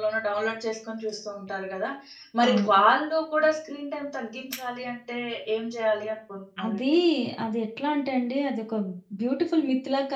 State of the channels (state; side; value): identical; both; correlation 1.00